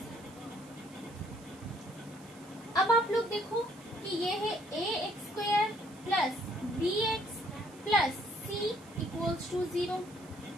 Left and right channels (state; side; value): noise; right; hiss, 23 dB below the sound